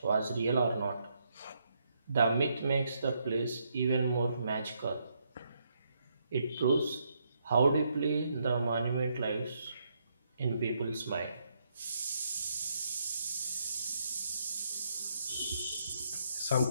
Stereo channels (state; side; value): inverted; both; correlation -0.77